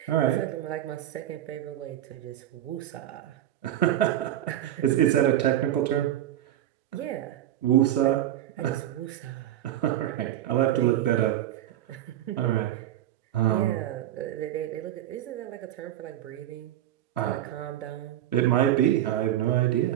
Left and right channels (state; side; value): quieter; left; 12.6 dB